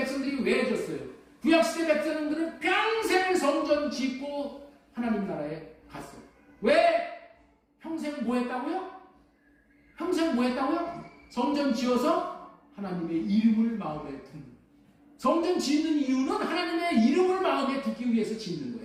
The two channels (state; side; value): identical; both; correlation 1.00